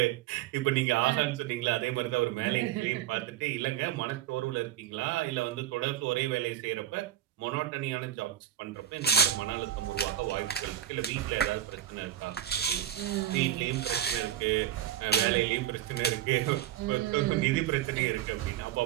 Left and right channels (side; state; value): left; quieter; 11.5 dB